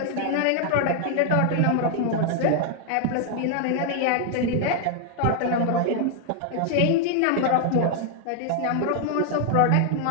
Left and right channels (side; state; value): both; different; correlation 0.00